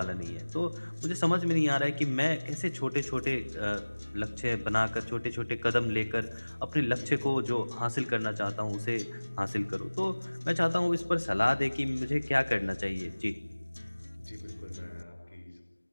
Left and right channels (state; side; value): inverted; both; correlation -1.00